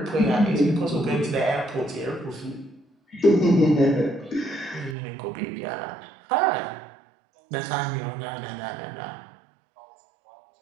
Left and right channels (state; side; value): drops out; left; at 5.0 s